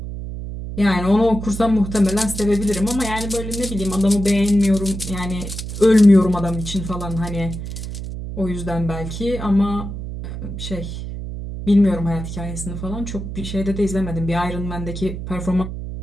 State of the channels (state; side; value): noise; right; hum, 7 dB below the sound